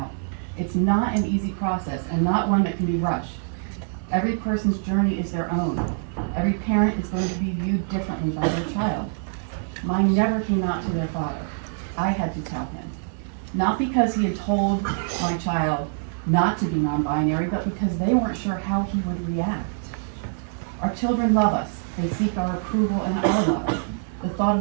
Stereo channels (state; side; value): silent; left; digital silence